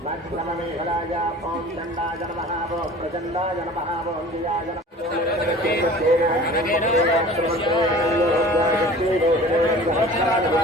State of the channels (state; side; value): normal; both; correlation 0.43